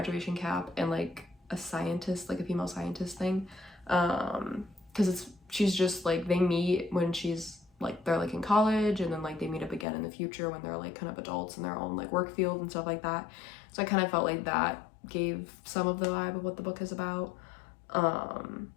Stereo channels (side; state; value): right; drops out; at 9.9 s